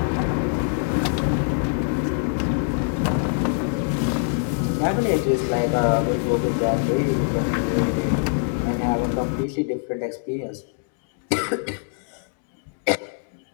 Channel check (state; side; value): silent; right; 63 dB below the other